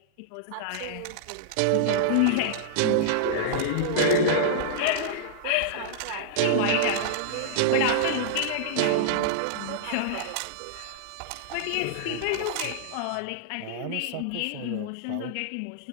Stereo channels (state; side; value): different; both; correlation -0.02